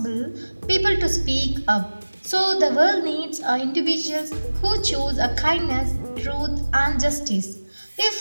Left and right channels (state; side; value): inverted; both; correlation -1.00